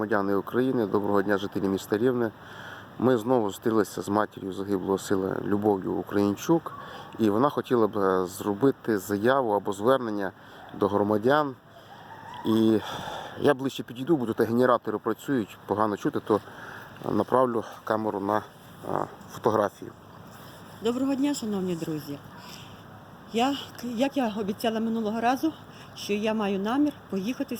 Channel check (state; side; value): identical; both; correlation 1.00